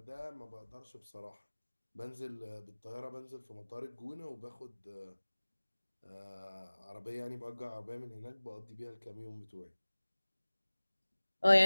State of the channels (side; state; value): both; inverted; correlation -1.00